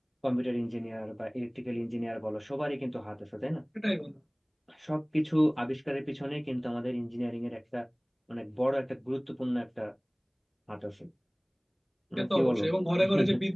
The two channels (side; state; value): both; identical; correlation 1.00